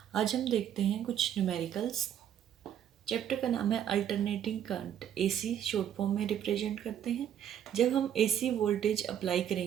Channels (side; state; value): left; quieter; 9.8 dB